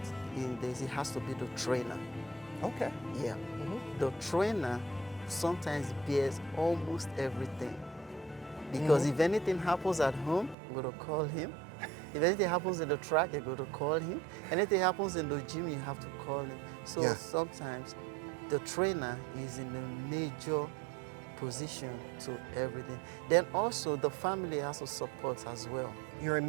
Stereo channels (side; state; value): left; drops out; at 10.6 s